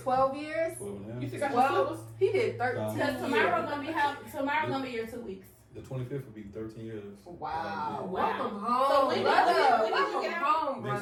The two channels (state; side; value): identical; both; correlation 1.00